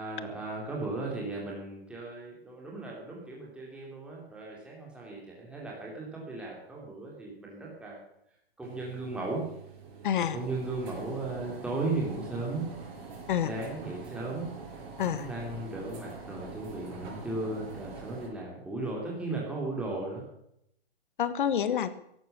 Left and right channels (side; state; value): both; normal; correlation 0.19